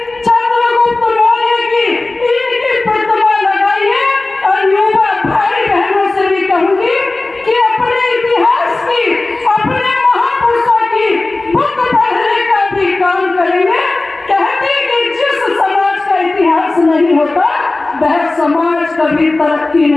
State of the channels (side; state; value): right; quieter; 3.1 dB